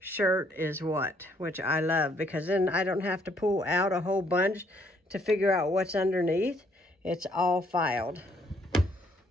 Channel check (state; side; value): normal; both; correlation 0.67